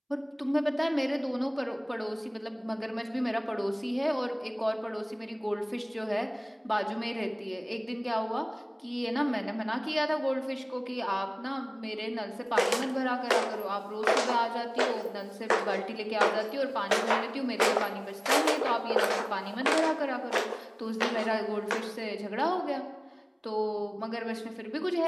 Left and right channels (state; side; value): identical; both; correlation 1.00